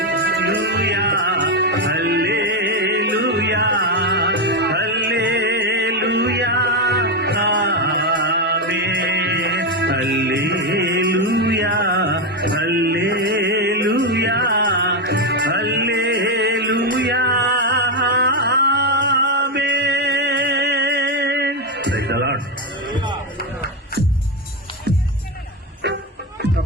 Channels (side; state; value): both; normal; correlation 0.08